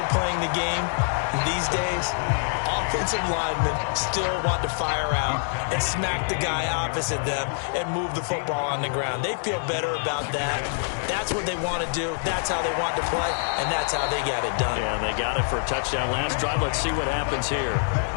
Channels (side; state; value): right; silent; 61 dB below the other